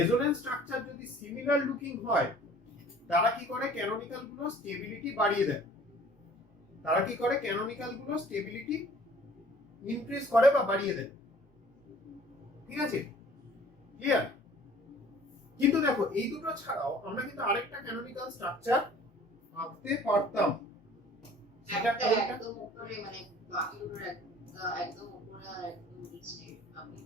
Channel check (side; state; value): both; normal; correlation 0.51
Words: structure যদি similar looking হয়, তারা কি করে, canonical গুলো stability বাড়িয়ে দেয়, increase করে বা বাড়িয়ে দেয়। ঠিক আছে, ক্লিয়ার? কিন্তু দেখো এই দুটো ছাড়াও আমরা কিন্তু আরেকটা ক্যানোনিক্যাল স্ট্রাকচার আঁকতে পারতাম। সেটা একদম উপরে, মানে বাকি দুটোর একদম উপরে আর একদম নিচে আপনি